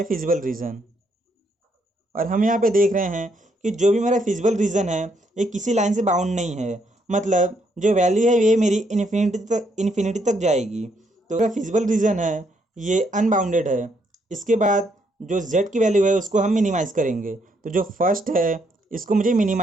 फिजिबल रीजन। और हम यहाँ पे देख रहे हैं कि जो भी मेरा फिजिबल रीजन है ये किसी लाइन से बाउंड नहीं है, मतलब जो वैल्यू है ये मेरी इन्फिनिटी तक जाएगी। तो मेरा फिजिबल रीजन है ये अनबाउंडेड है। इसके बाद जो z की वैल्यू है उसको हम मिनिमाइज करेंगे। तो जो फर्स्ट है इसको मुझे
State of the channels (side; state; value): both; normal; correlation 0.73